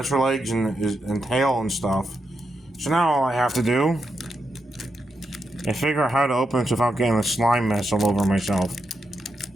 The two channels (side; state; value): both; normal; correlation 0.85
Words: legs and tail and stuff. So now all I have to do is figure out how to open this without getting a slime mess all over myself.